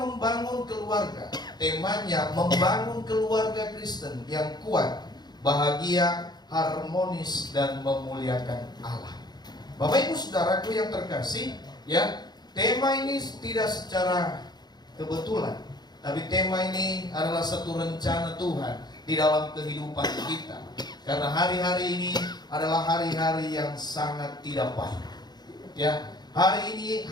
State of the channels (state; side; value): late; right; 0.20 ms